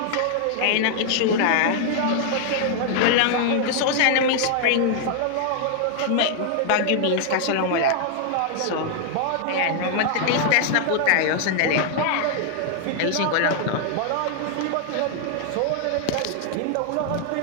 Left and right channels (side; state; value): both; different; correlation 0.00